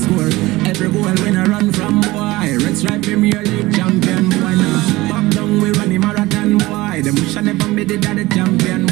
Every goal when I run from boy. Red Stripe Premier League champion boy now. Pop down we run the marathon boy. The bush never made it the champion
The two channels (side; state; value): left; quieter; 19.4 dB